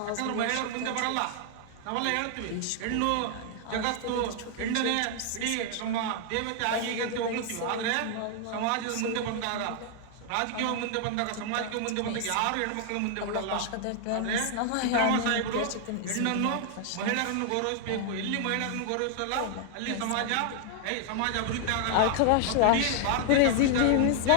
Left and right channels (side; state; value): both; different; correlation 0.00